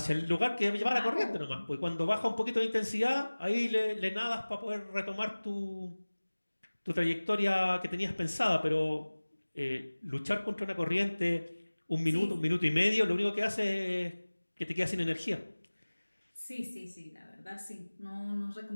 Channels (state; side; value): inverted; both; correlation -1.00